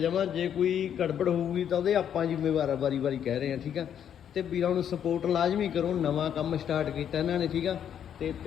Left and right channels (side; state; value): right; quieter; 9.1 dB